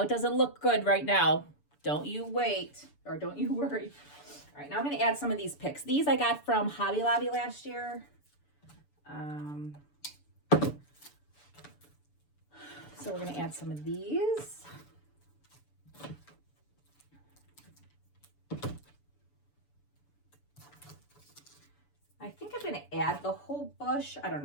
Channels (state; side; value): late; right; 6.9 ms